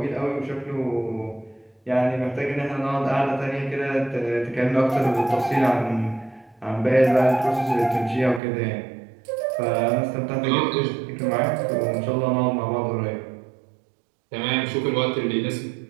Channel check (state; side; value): drops out; left; at 8.4 s